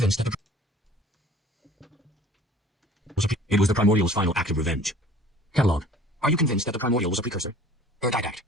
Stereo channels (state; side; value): normal; both; correlation 0.49